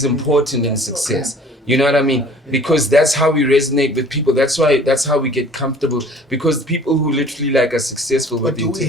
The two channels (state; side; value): normal; both; correlation 0.51